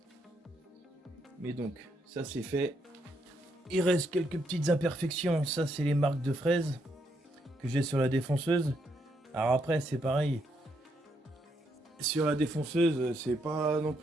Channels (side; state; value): both; normal; correlation 0.76